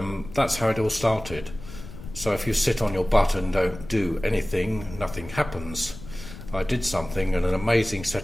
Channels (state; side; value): noise; left; rumble, 13 dB below the sound